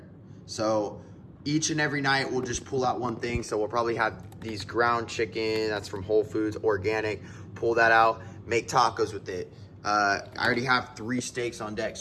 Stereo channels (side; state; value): both; identical; correlation 1.00